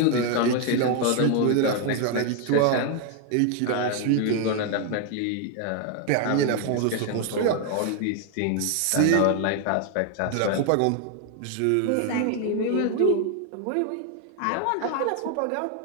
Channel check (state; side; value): different; both; correlation 0.01